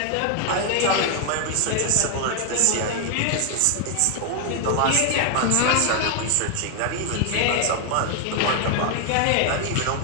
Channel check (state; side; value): different; both; correlation 0.00